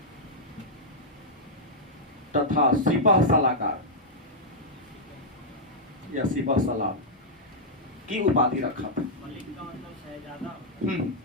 तथा सिपह सलाहकार या सिपह सलार की उपाधि रखा था।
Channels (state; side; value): normal; both; correlation -0.07